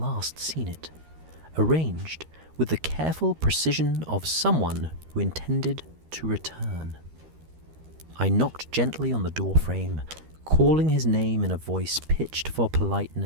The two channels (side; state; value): left; late; 13 ms